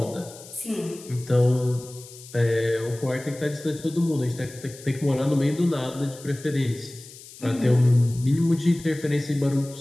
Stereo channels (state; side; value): noise; left; hiss, 18 dB below the sound